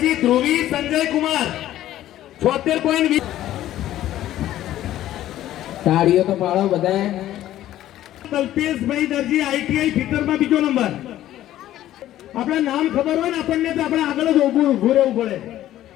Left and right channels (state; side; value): quieter; right; 13.3 dB